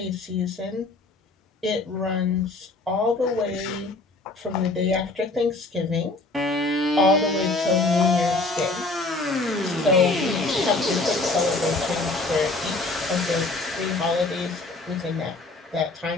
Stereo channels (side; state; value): right; quieter; 3.2 dB